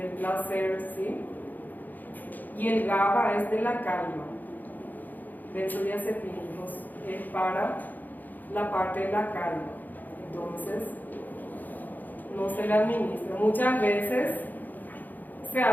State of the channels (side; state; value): right; late; 0.084 ms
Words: placer, ¿sí? Y el GABA es de la calma. Benzodiazepínicos es para la parte de la calma. Entonces, no se le administra. Muchas veces se